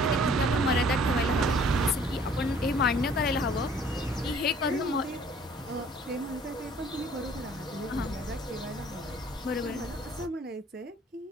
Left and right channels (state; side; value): normal; both; correlation 0.55